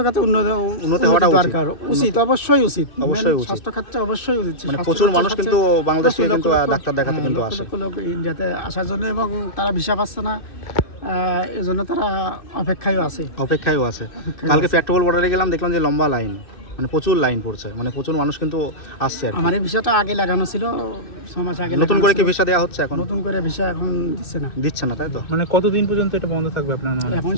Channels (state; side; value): late; right; 2.5 ms